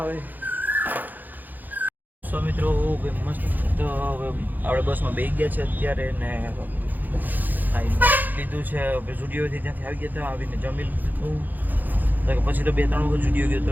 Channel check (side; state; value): left; late; 0.085 ms